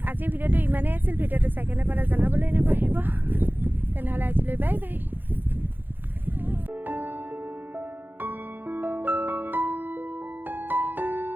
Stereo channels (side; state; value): left; late; 0.092 ms